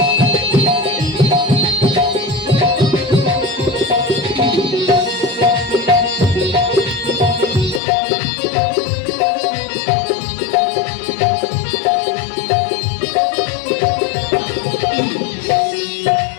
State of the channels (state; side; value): drops out; right; at 7.8 s